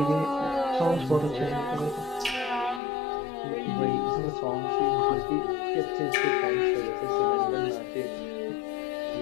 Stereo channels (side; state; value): right; drops out; at 2.8 s